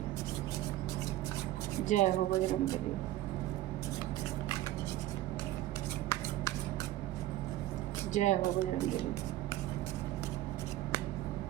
जय हो बजरंगबली। जय हो Bajrangbali.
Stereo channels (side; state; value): left; quieter; 15.0 dB